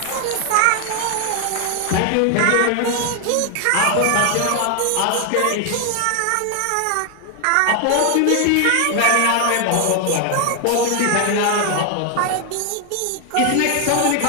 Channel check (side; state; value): both; different; correlation 0.00